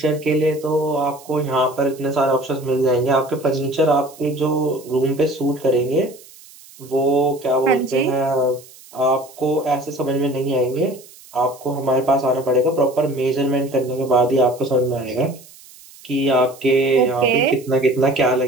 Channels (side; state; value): right; noise; hiss, 22 dB below the sound